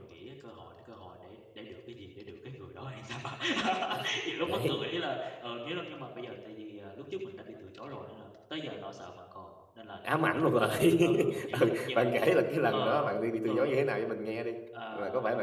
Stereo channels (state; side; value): identical; both; correlation 1.00